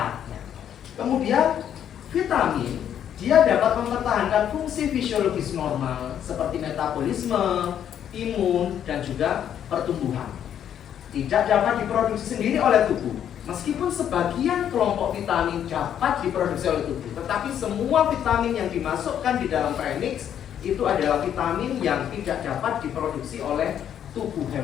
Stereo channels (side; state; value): right; quieter; 9.6 dB